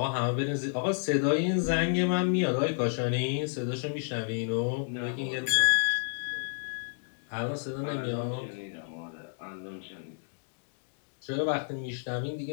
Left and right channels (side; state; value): right; silent; digital silence